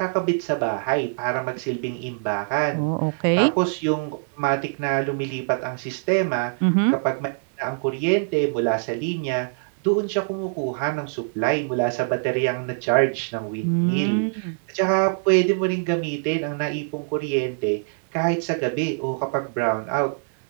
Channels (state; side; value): silent; left; digital silence